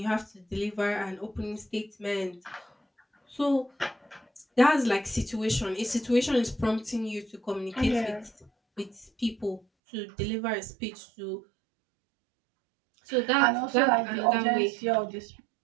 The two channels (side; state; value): left; drops out; at 9.6 s